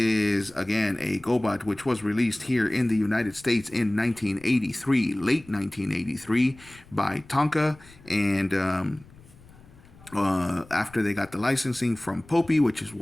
again, a Gobot which was released here in the United States in 1983, late 1983, by Tonka, and after they got the licensing from Popey, which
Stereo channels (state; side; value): noise; left; rumble, 24 dB below the sound